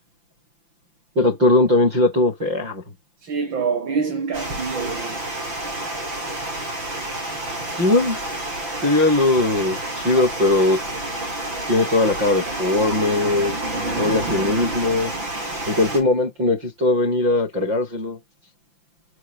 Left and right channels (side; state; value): left; late; 5.8 ms